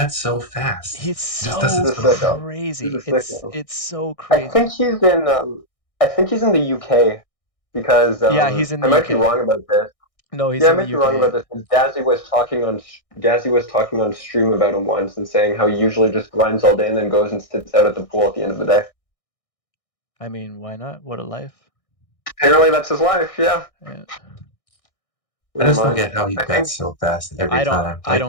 so fast. he's Just does so He's it a so fast. sicko. He's a crazy. sicko. It's so I crazy. think he's in. I think he's in the UK because Yeah, he's in I the might be UK. wrong about this. No, he's Yeah, I in the might be wrong UK. about this. Because Dazzy was talking on stream about him once and saying how he usually just grinds all day and then goes and sits out at the pool at the end of the day. I mean, why not? What a life. Apparently, that's his life. Yeah, Yeah. I never just don't mind. get how he I think bets so fast every time. I Like,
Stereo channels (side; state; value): right; late; 1.6 ms